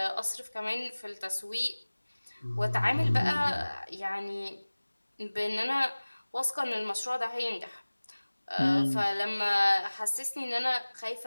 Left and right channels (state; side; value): inverted; both; correlation -1.00